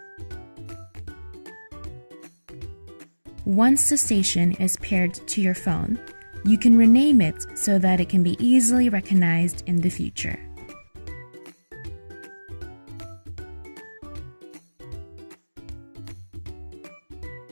Once the station is paired to your phone, you can rename it so that it can be easily recognized in the future.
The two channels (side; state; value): both; inverted; correlation -1.00